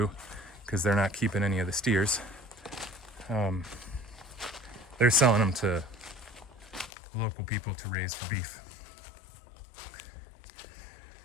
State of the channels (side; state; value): right; drops out; at 6.9 s